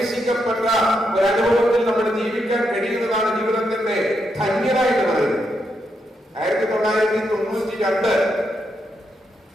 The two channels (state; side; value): normal; both; correlation 0.81